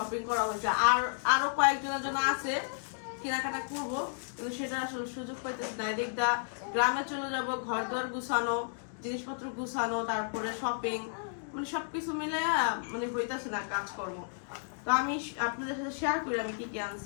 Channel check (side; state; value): right; silent; digital silence